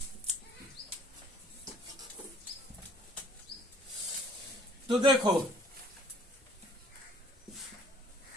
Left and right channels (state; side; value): normal; both; correlation 0.57